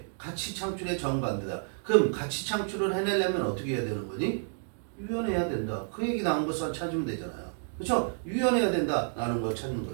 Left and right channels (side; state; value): left; silent; digital silence